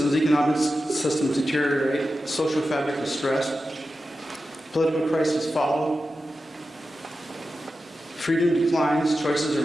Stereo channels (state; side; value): normal; both; correlation 0.92